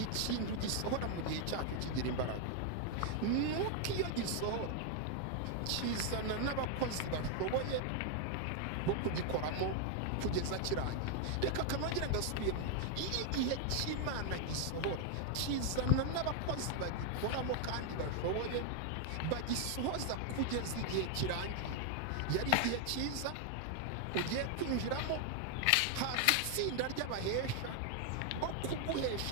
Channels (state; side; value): different; both; correlation 0.00